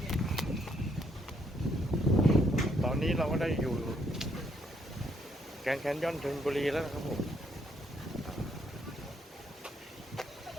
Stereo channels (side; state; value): both; normal; correlation 0.71